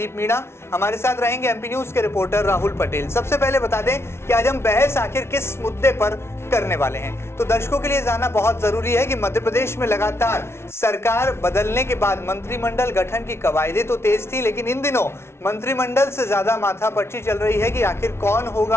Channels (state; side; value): late; right; 0.12 ms